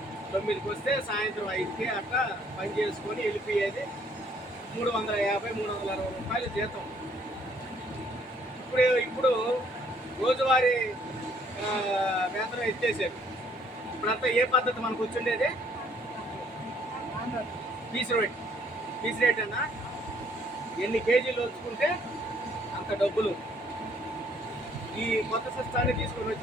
9కి వస్తే సాయంత్రం 5కి అట్లా పని చేసుకొని వెళ్ళిపోయేది. 350-360 రూపాయలు జీతం. ఇప్పుడు రోజువారీ వేతనం ఎత్తేసారు. ఇప్పుడంతా ఏ పద్ధతి మనకు వచ్చిండేది? పీస్ రేట్ అన్నా ఎన్ని కేజీలు వచ్చుకుంటే అంత డబ్బులు. ఈ కొత్త సిస్టాన్ని తీసుకొని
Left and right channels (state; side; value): normal; both; correlation 0.63